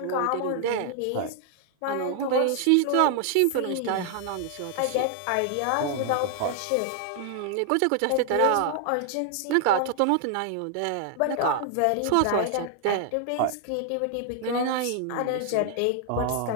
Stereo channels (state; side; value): different; both; correlation 0.00